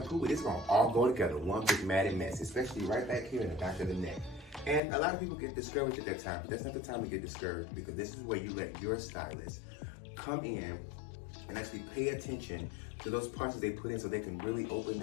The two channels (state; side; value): drops out; right; at 4.8 s